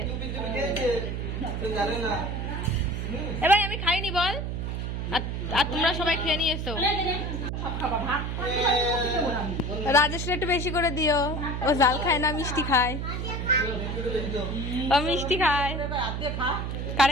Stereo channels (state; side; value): noise; right; hum, 3 dB below the sound